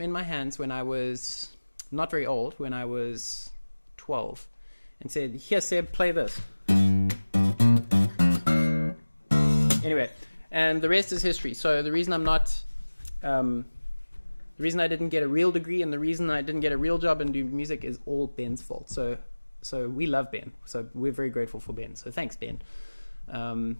my hands when I was not very old, when I was 12, and said, "Here, Seb, play this." Anyway, and the rest is history. So the reason I'm not the reason I didn't get a real degree and the reason I didn't get a real job and do music is all Ben's fault. So we love Ben. So we're very grateful for Ben. So thanks, Ben. And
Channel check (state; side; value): inverted; both; correlation -1.00